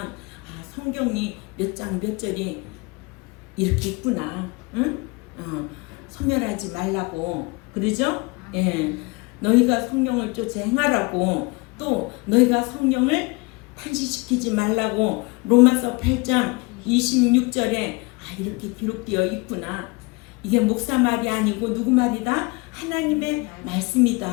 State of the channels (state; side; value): quieter; right; 26.8 dB